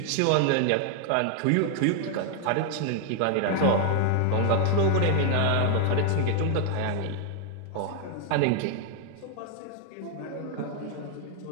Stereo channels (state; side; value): different; both; correlation 0.00